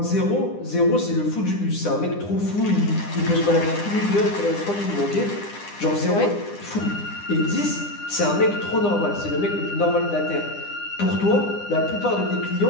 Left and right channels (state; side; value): late; right; 9.9 ms